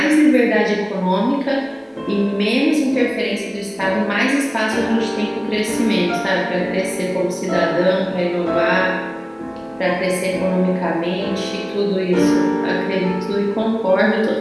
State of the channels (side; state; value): both; identical; correlation 1.00